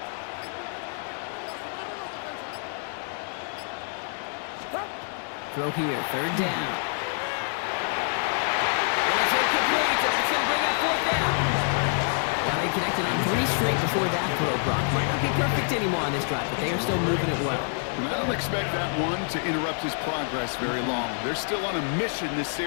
Throw here, 3rd down. And it's incomplete, and that's going to bring up 4th down. Well, they connected on 3 straight before that throw, Brock. Might not be perfect anymore on this drive, but they are still moving it well. And I don't expect that one to interrupt his progress very long. They're still on a mission this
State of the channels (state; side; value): silent; right; 55 dB below the other